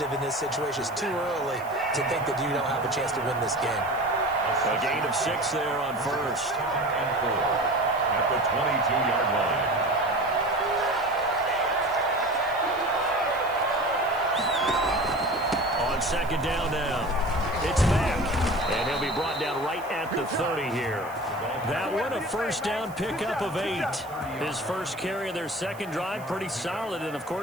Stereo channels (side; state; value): right; noise; hiss, 22 dB below the sound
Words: in this situation. It's too early to think that you don't have a chance to win this game. A gain of 6 there on first. And 4 at the 22-yard line. On second down now. It's back. And he'll be brought down right at the 30 here. That one, a first down pickup of 8. His first carry of their second drive, pretty solid. And, of